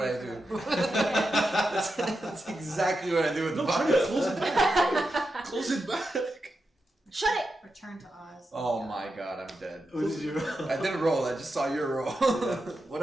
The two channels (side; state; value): both; normal; correlation 0.88